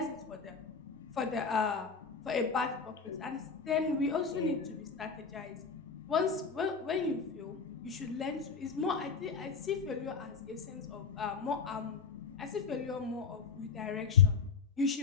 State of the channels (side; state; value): right; quieter; 5.3 dB